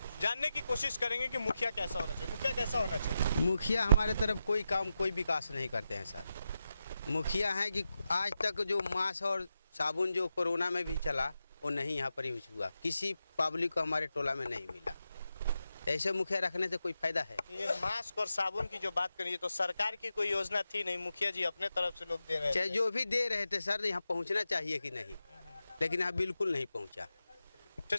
जानने की कोशिश करेंगे कि मुखिया कैसा होना चाहिए। मुखिया कैसा होना चाहिए? मुखिया हमारे तरफ कोई काम, कोई विकास नहीं करते हैं सर। मुखिया है कि आज तक जो मास्क और साबुन जो कोरोना में भी चला वो नहीं यहाँ पर यूज हुआ, किसी पब्लिक को हमारे टोला में नहीं मिला। ऐसे मुखिया रखने से कोई फायदा है? ये मास्क और साबुन की जो बात करिए तो सरकार की कोई योजना थी नहीं, मुखिया जी अपने तरफ से लोग दे रहे चाहे थे। जो भी दे रहे थे सर, यहाँ पहुँचना चाहिए कि नहीं, लेकिन यहाँ बिल्कुल नहीं पहुँचा।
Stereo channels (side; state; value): both; inverted; correlation -0.89